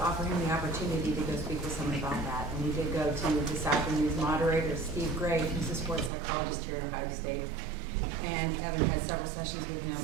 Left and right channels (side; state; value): left; drops out; at 6.1 s